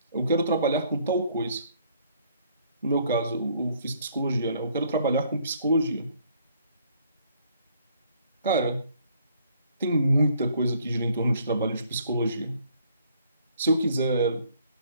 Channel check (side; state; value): both; inverted; correlation -0.63